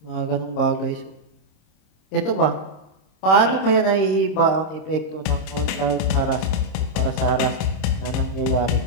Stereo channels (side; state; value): right; late; 26 ms